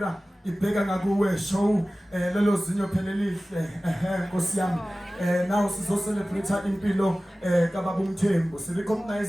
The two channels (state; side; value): normal; both; correlation 0.97